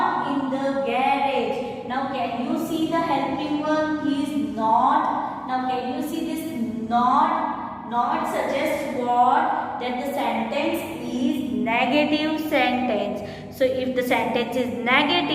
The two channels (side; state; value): both; identical; correlation 1.00